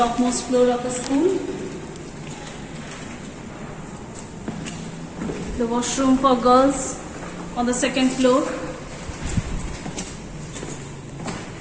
floor of the school. The washroom for girls on the second floor.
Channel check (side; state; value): both; identical; correlation 1.00